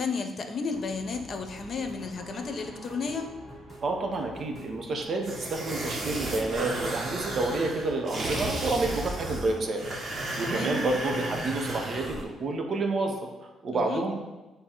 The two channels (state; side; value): normal; both; correlation 0.73